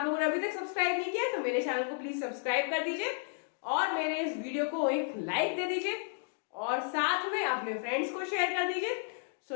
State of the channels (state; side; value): silent; right; 56 dB below the other